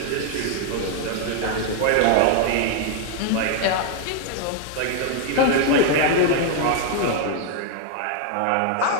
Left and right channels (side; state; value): both; different; correlation 0.00